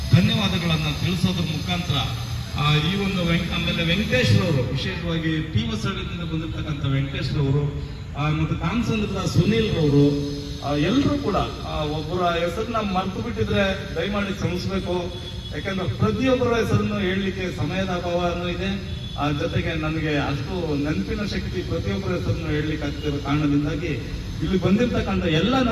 ಧನ್ಯವಾದಗಳನ್ನು ತಿಳಿಸೋದ್ರ ಮುಖಾಂತರ ಈ ಒಂದು ಆಮೇಲೆ ವೆಂಕಟೇಶ್ ಅವರು, ವಿಶೇಷವಾಗಿ ಟಿ ಹೊಸಳ್ಳಿಯಿಂದ ಬಂದಿರತಕ್ಕಂಥ ವೆಂಕಟೇಶ್ ಅವರು, ಮತ್ತು ಕಾಮಸಂದ್ರದ ಸುನೀಲ್ ಅವರು, ಎಲ್ಲರೂ ಕೂಡ ಒಬ್ಬರ ಹೆಸರನ್ನ ಮರ್ತು ಬಿಟ್ಟಿದ್ರೆ ದಯಮಾಡಿ ಕ್ಷಮಿಸಬೇಕು. ಯಾಕಂದ್ರೆ ಪ್ರತಿಯೊಬ್ಬರ ಹೆಸರನ್ನು ಹೇಳಲಿಕ್ಕೆ ಸಮಯದ ಅಭಾವನೂ ಇದೆ. ಜೊತೆಗೆ ನನಗೆ ಅಷ್ಟು ನೆನಪಿನ ಶಕ್ತಿ ಪ್ರತಿಯೊಬ್ಬರ ಹೆಸರನ್ನು ಹೇಳಲಿಕ್ಕೆ ಆಗ್ತಿರೋ ಕಾರಣದಿಂದಾಗಿ ಇಲ್ಲಿ ಬಂದಿರತಕ್ಕಂಥ ಎಲ್ಲ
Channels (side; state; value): both; identical; correlation 1.00